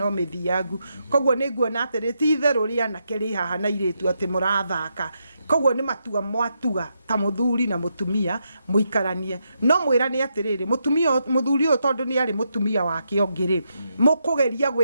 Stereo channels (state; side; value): inverted; both; correlation -0.82